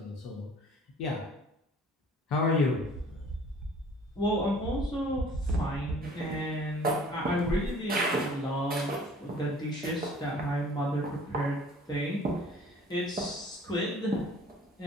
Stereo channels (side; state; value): both; normal; correlation 0.51